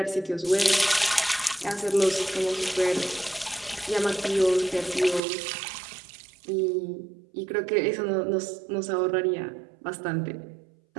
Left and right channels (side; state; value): left; drops out; at 5.2 s